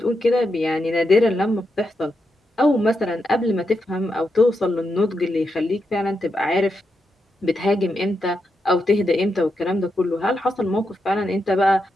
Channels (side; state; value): both; normal; correlation 0.85